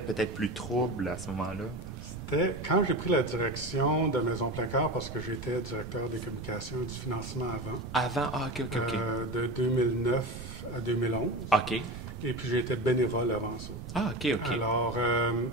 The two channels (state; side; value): noise; right; rumble, 12 dB below the sound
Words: peut-être plus trouble à ce moment-là? C'était quand j'ai pris la direction de Maison Plein Cœur, parce que j'étais directeur des communications et du financement avant. Avant? Ah, OK. De 2009 à 2011. OK. Et puis j'ai été bénévole avant ça. Ah, OK. Alors,